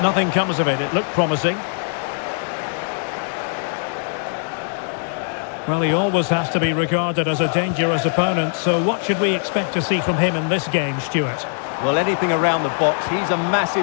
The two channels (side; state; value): right; silent; 65 dB below the other